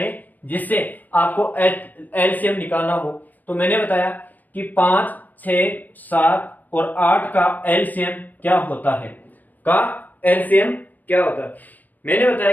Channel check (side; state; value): right; late; 0.085 ms